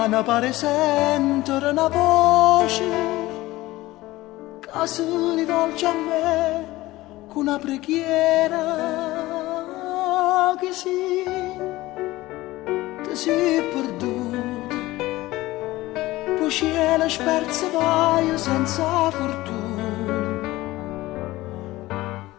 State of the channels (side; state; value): right; quieter; 18.2 dB